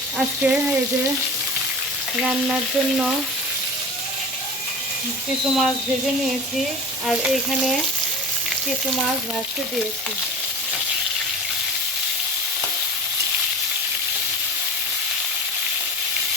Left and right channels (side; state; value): both; normal; correlation 0.33